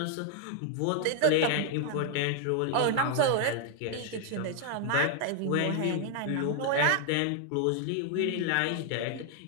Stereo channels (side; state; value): both; different; correlation 0.00